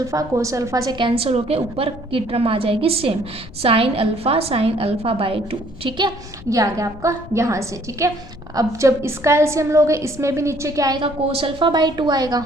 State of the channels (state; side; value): noise; left; rumble, 17 dB below the sound